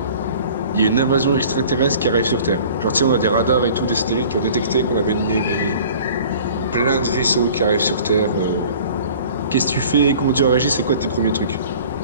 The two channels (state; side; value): inverted; both; correlation -0.47